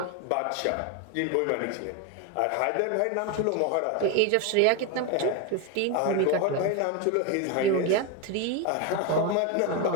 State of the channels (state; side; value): different; both; correlation 0.02